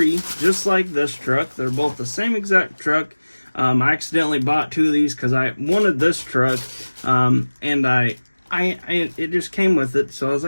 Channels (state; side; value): inverted; both; correlation -1.00